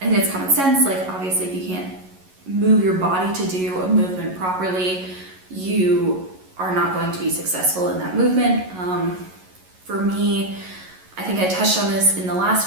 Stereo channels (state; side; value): late; left; 11 ms